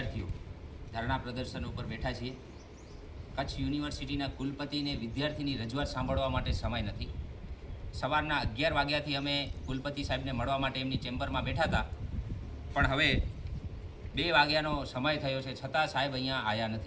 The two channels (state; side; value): identical; both; correlation 1.00